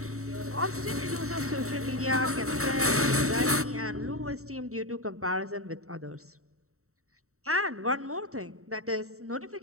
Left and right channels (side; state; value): left; late; 0.64 ms